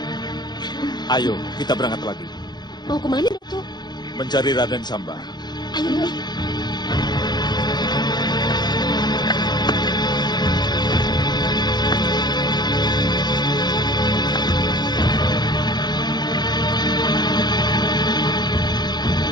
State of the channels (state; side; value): late; right; 0.21 ms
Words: Ayo, kita berangkat lagi. Mau kemana, Datuk? Mencari Raden Samba. Ayo, nih.